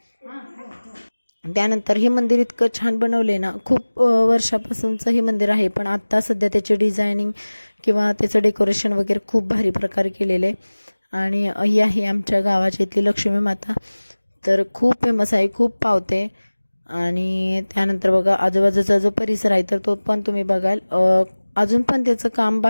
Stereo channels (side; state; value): both; inverted; correlation -1.00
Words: त्यानंतर हे मंदिर इतकं छान बनवले ना, खूप वर्षापासूनचं हे मंदिर आहे, पण आत्ता सध्या त्याचे डिझायनिंग किंवा त्याचं डेकोरेशन वगैरे खूप भारी प्रकारे केलेलं आहे. आणि ही आहे आमच्या गावाची इथली लक्ष्मी माता, तर खूप फेमस आहे, खूप पावते. आणि त्यानंतर बघा आजूबाजूचा जो परिसर आहे तर तो पण तुम्ही बघाल, अजून पण त्याचं काम